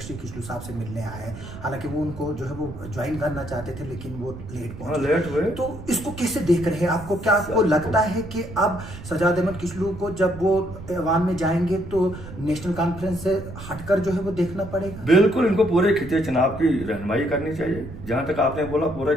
किशोर साहब से मिलने आए। हालांकि वो उनको जो है वो ज्वाइन करना चाहते थे, लेकिन वो लेट पहुंचे। तो इसको कैसे देख रहे हैं? आपको क्या आपको लगता है कि अब सजाद अहमद किचलू को जब वो ऐवान में जाएंगे तो नेशनल कॉन्फ्रेंस से हटकर जो है वो देखना पड़ेगा? बिल्कुल, इनको पूरे खिते चुनाव की रहनुमाई करनी चाहिए। जहां तक आपने बोला पूरे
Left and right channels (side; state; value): right; noise; rumble, 13 dB below the sound